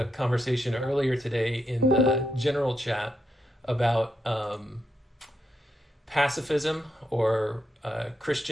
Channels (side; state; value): both; normal; correlation 0.82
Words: conversation earlier today in the general chat about pacifism or